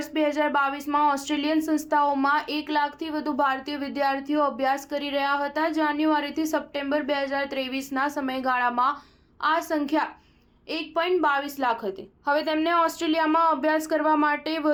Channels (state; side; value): identical; both; correlation 1.00